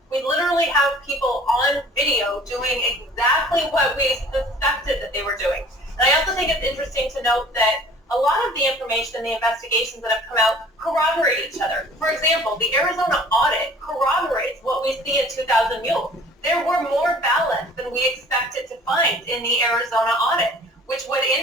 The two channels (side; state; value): both; normal; correlation 0.49